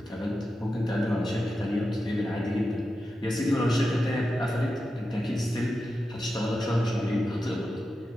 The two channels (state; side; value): normal; both; correlation 0.91